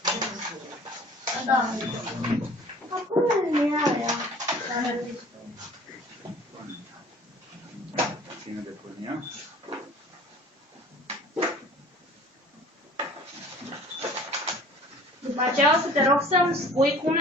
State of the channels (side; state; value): both; normal; correlation 0.48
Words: Da. Acum nu e aia. Ține de pârnia. După aceea o să te rog să-mi spui cum